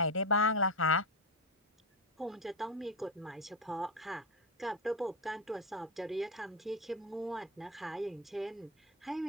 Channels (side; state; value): both; normal; correlation 0.13